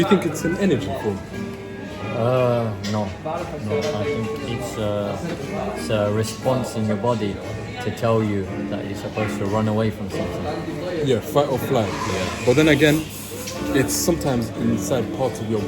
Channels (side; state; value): both; identical; correlation 1.00